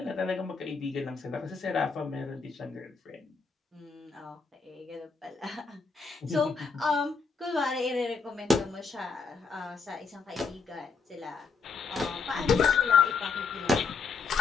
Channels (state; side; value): quieter; right; 4.9 dB